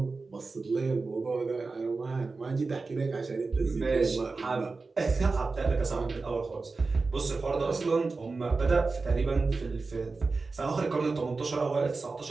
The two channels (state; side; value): quieter; left; 4.0 dB